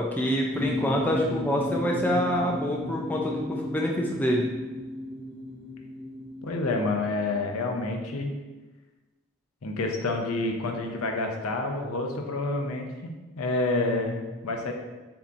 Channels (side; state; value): both; normal; correlation 0.46